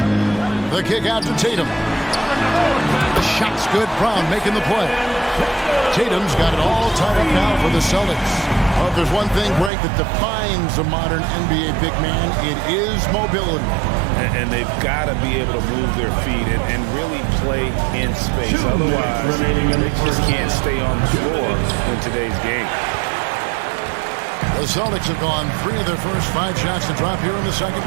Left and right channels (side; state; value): left; drops out; at 9.7 s